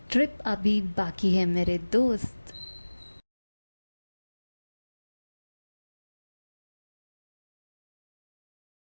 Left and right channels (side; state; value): both; inverted; correlation -1.00